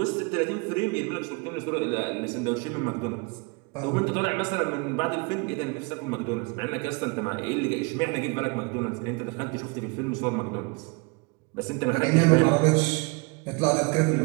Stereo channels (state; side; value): quieter; left; 30.0 dB